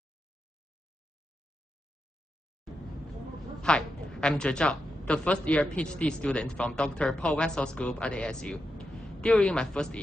Hi, I'm Je Zhao, the first-year PhD student from Dr. Paul Wessel's group at ASU. During my first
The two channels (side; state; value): both; normal; correlation 0.87